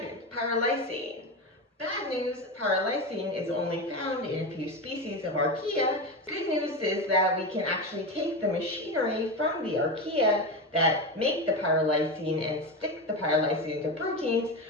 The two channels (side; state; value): both; normal; correlation 0.19